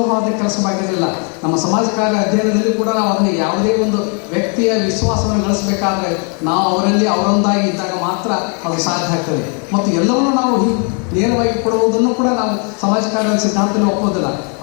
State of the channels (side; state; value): right; quieter; 38.5 dB